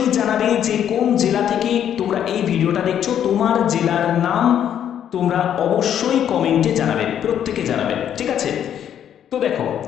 জানাবে যে কোন জেলা থেকে তোমরা এই ভিডিওটা দেখছো। তোমার জেলার নাম তোমরা অবশ্যই কমেন্টে জানাবে, প্রত্যেকে জানাবে, ঠিক আছে? তো দেখো,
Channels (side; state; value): right; quieter; 9.7 dB